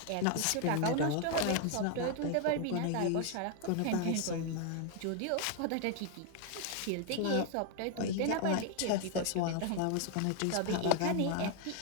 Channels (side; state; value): both; different; correlation 0.00